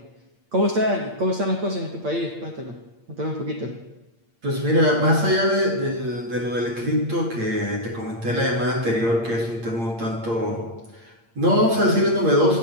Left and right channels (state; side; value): late; left; 8.7 ms